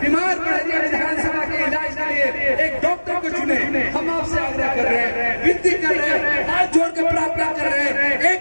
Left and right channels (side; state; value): both; inverted; correlation -1.00